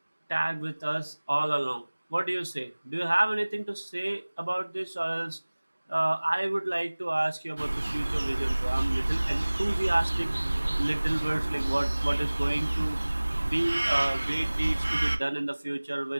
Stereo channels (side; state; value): both; inverted; correlation -1.00